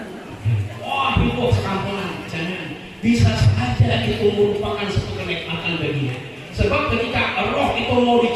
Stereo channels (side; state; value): both; identical; correlation 1.00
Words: Wah itu sekampungan. Jangan. Bisa saja itu merupakan satu kenikmatan baginya. Sebab ketika roh itu mau